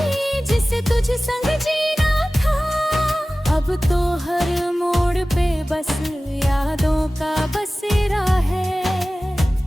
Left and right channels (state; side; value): normal; both; correlation 0.97